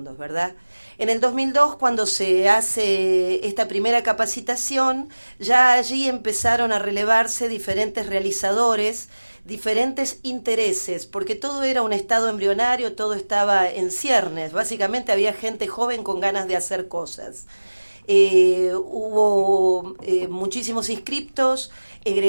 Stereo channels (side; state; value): both; inverted; correlation -1.00